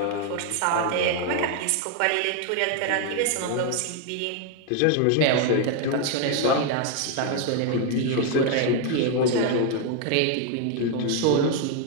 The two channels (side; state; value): both; different; correlation 0.01